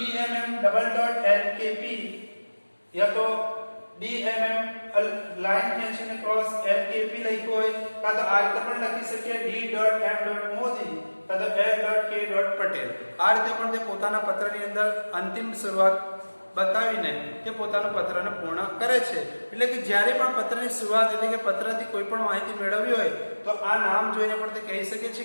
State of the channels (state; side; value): inverted; both; correlation -1.00